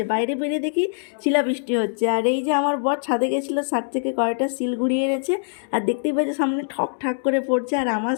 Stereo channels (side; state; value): right; silent; digital silence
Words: বাইরে বেরিয়ে দেখি শিলাবৃষ্টি হচ্ছে। আর এই যে আমার বর ছাদে গেছিলো, ছাদ থেকে কয়েকটা শিল ঘুরিয়ে এনেছে, আর দেখতেই পাচ্ছি সামনে ঠক ঠাক করে পড়ছে। আর আমার